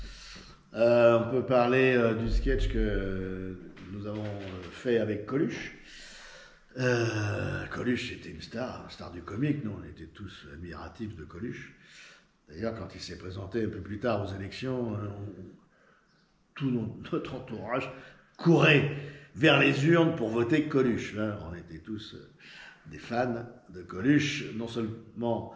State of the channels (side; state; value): both; identical; correlation 1.00